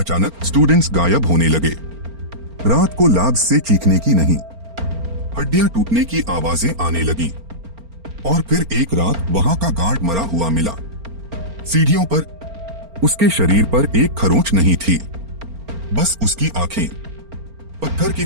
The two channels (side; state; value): left; late; 4.4 ms